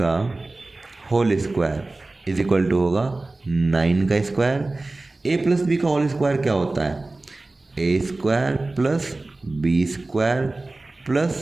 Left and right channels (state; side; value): quieter; left; 3.1 dB